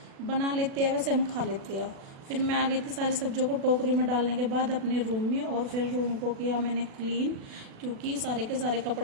बना लेते हैं वैसे हम खा लेते हैं। फिर मैं आ गई थी सारी सब्जियों को टोकरी में डालने के बाद अपने रूम में, और फिर रूम को किया मैंने क्लीन, क्योंकि सारे के सारे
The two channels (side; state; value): left; late; 36 ms